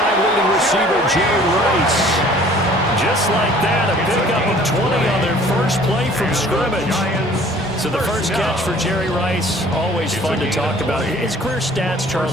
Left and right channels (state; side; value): normal; both; correlation 0.52